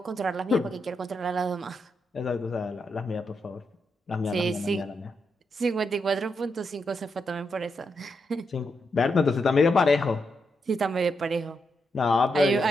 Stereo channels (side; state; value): both; normal; correlation 0.83